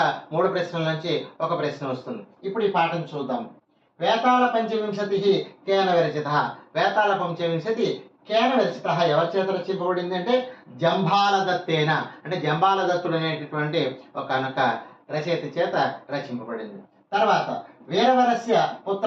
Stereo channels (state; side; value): identical; both; correlation 1.00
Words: 3 ప్రశ్నల నుంచి ఒక ప్రశ్న వస్తుంది. ఇప్పుడు ఈ పాఠం చూద్దాం. వేతాళ పంచవింశతి కేన విరచిత. వేతాళ పంచవింశతి కేన విరచిత ఎవరి చేత రచింపబడింది అంటే జంబాలదత్తేన. అంటే జంబాలదత్తుడు అనేటటువంటి ఒక రచయిత చేత రచింపబడింది. తర్వాత వీరవరస్య